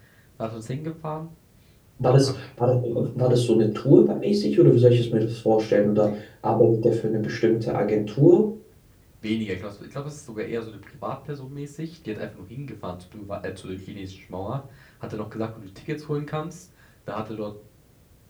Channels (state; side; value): identical; both; correlation 1.00